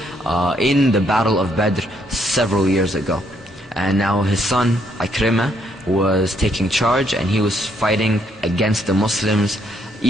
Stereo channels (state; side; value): normal; both; correlation 0.72